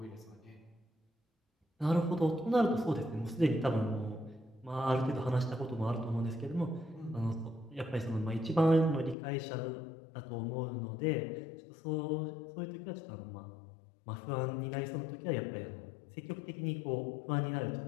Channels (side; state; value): right; drops out; at 9.2 s